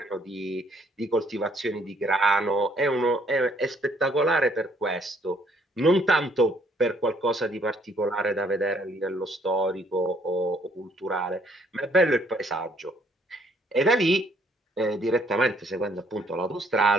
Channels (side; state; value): both; normal; correlation 0.65